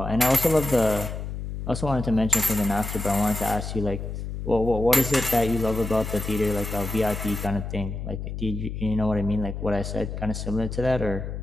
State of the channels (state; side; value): noise; left; hum, 6 dB below the sound